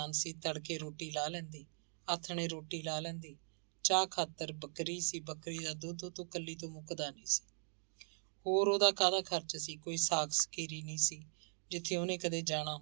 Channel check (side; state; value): left; silent; 51 dB below the other